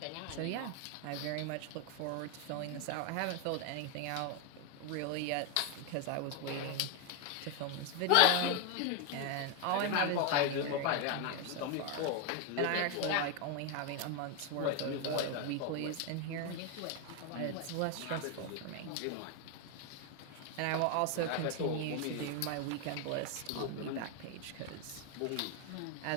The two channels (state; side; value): different; both; correlation 0.01